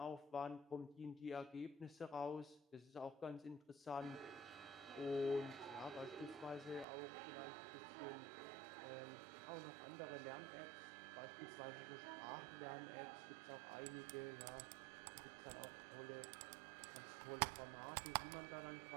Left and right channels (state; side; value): drops out; left; at 6.9 s